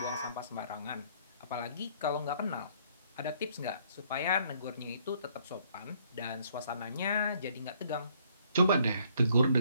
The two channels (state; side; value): inverted; both; correlation -0.65